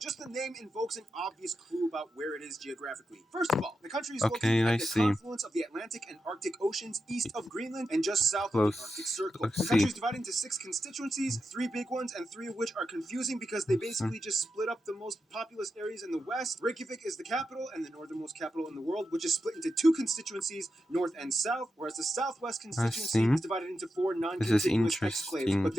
Just the name invokes an obvious clue about where it is geographically. First of all, the country is Okay, located I at the see. confluence of the Atlantic and Arctic Oceans east of Greenland and just south of the Arctic Circle. Let's The see. country is divided into 6 constituencies, 3 big ones, and 3 of which are confusing because they basically just split up the most populous areas in the west. Reykjavik is the capital and the northernmost capital in the world, which is split into 2 constituencies, north and south, whereas the southwest constituency is divided into 4 non-contiguous exclaves, but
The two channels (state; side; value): normal; both; correlation 0.88